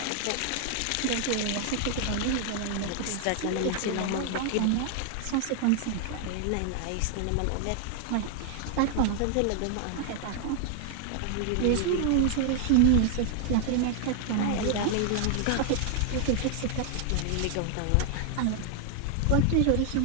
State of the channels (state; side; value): different; both; correlation 0.00